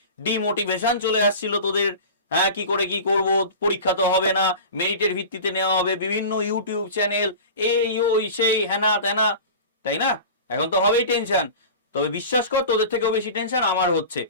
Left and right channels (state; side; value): inverted; both; correlation -0.34